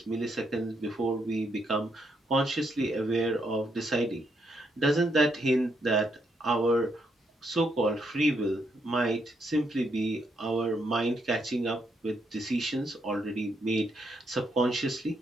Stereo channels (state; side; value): normal; both; correlation 0.77